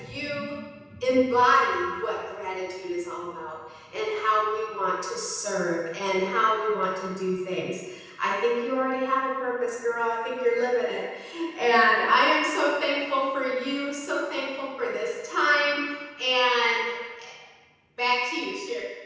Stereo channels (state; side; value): identical; both; correlation 1.00